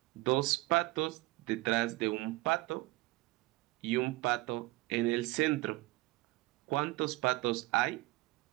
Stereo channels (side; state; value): left; quieter; 20.7 dB